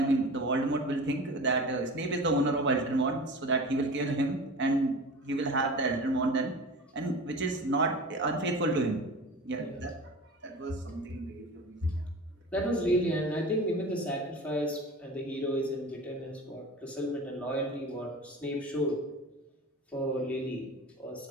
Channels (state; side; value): normal; both; correlation 0.35